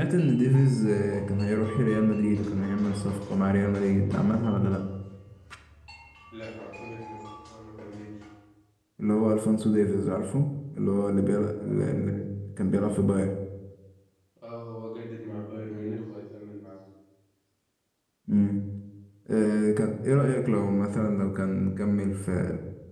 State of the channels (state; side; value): identical; both; correlation 1.00